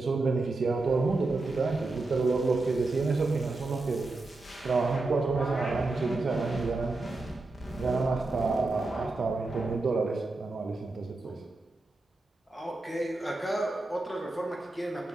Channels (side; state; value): left; quieter; 3.2 dB